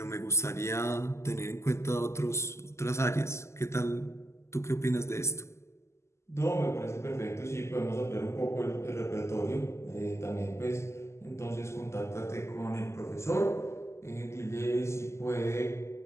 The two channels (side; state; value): right; late; 0.13 ms